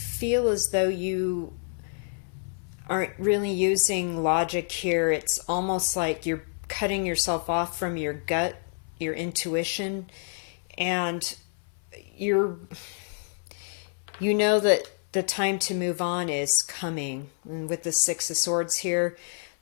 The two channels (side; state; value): right; silent; 60 dB below the other